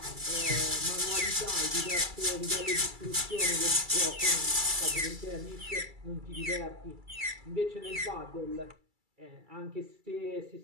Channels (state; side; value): late; left; 2.3 ms